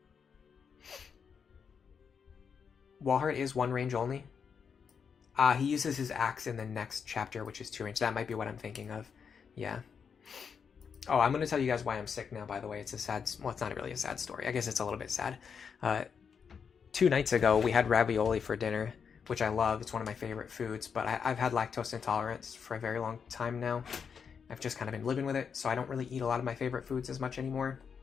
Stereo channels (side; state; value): right; quieter; 6.5 dB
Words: Walhart is 1 range only. He uses his axe in the next chapter, which is 2 range. That might be what I'm thinking of. Yeah. Oh, I'm going to tell you guys why I'm sick now, by the way. It's a sad... Well, it's not really a sad story. I guess it's a little bit sad. 2 nights ago, we had ravioli for dinner, which I love. It's one of my favorite foods, but I've had lactose intolerance for a very long time now. I've just kind of been living with it, so I don't really eat a lot of my favorite foods as much anymore.